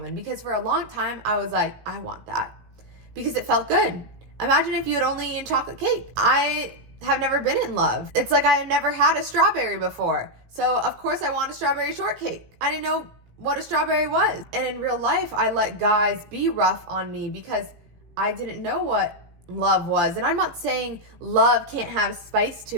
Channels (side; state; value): left; late; 17 ms